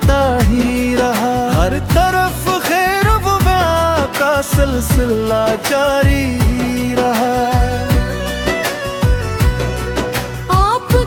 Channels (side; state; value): both; identical; correlation 1.00